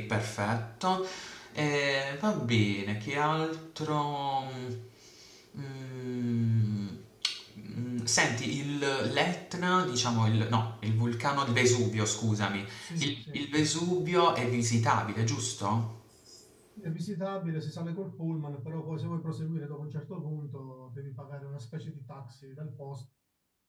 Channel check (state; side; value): identical; both; correlation 1.00